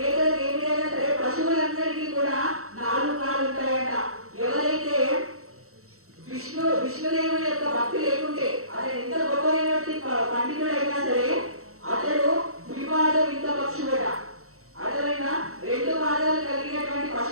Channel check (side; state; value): left; late; 0.63 ms